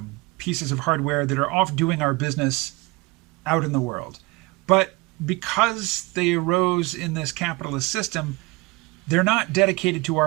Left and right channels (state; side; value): quieter; left; 24.3 dB